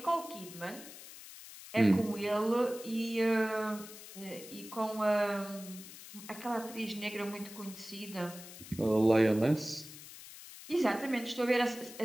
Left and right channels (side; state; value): left; noise; hiss, 15 dB below the sound